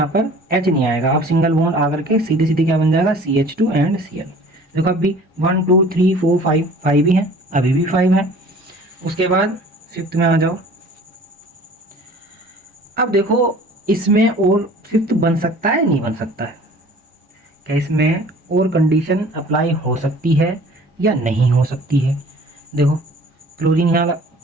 पर H नहीं आएगा, अब सिंगल बॉन्ड आकर के सीधे सीधे क्या बन जाएगा CH2 एंड Cl। देखो अब भी 1 2 3 4 5 5 ही है, अभी भी 5 है। उसके बाद फिफ्थ में आ जाओ, अब देखो इसमें और फिफ्थ बन सकता है नहीं बन सकता है, क्या इसमें और कंडीशन अप्लाई हो सकती है या नहीं हो सकती है। देखो क्लोरीन यहाँ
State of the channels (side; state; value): both; normal; correlation 0.48